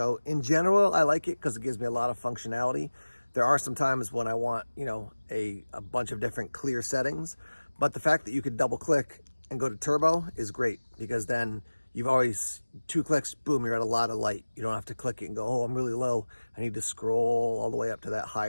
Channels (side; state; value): both; inverted; correlation -1.00